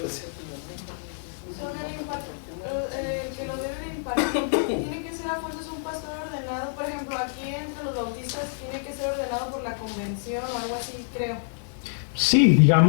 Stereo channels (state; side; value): silent; right; digital silence